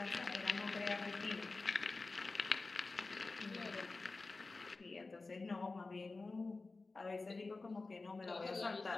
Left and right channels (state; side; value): quieter; right; 3.6 dB